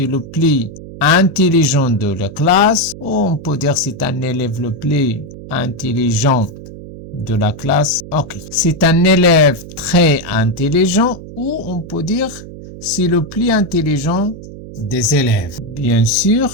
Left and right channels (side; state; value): right; noise; hum, 14 dB below the sound